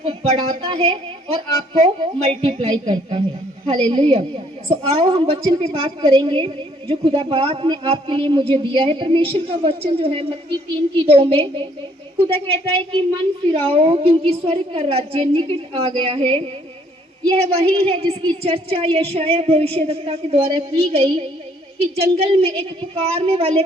बढ़ाता है और आपको मल्टीप्लाई करता है। हालेलुया। आओ हम वचन पे बात करेंगे जो खुदा बाप ने आपके लिए मुझे दिया है। परमेश्वर का वचन जो है मत्ती 3:2 में खुदा कहता है कि मन फिराओ क्योंकि स्वर्ग का राज्य निकट आ गया है। यह वही है जिसकी चर्चा यशायाह भविष्यवक्ता के द्वारा की गई कि जंगल में एक पुकारने वाले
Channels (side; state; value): both; normal; correlation 0.64